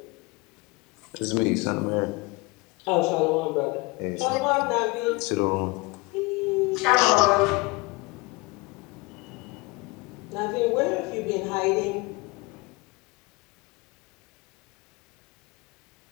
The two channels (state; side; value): quieter; right; 25.2 dB